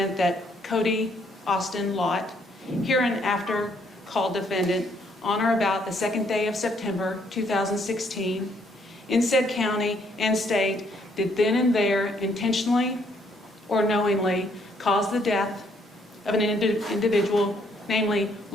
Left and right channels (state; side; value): normal; both; correlation 0.69